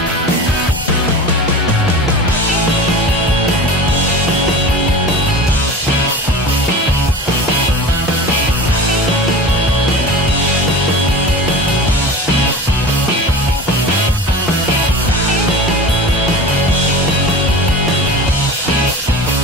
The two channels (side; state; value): both; normal; correlation 0.33